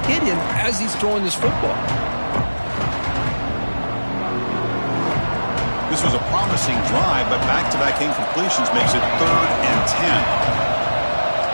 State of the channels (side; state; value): both; inverted; correlation -1.00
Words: hit him as he's throwing this football. This was a promising drive, but back-to-back incompletions makes it 3rd and 10.